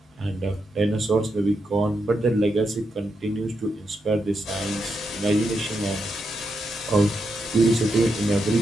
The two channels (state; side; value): normal; both; correlation 0.83